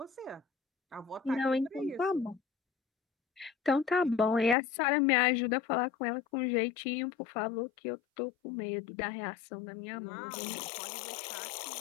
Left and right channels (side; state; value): right; drops out; at 4.5 s